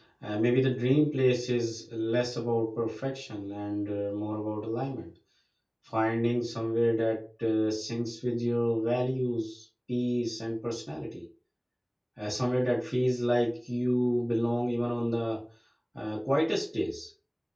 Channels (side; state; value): both; identical; correlation 1.00